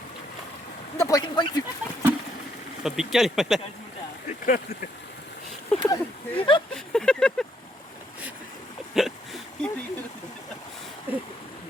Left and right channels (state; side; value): normal; both; correlation 0.72